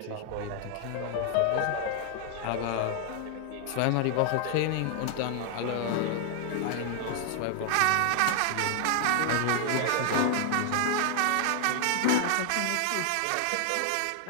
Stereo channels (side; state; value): both; different; correlation 0.00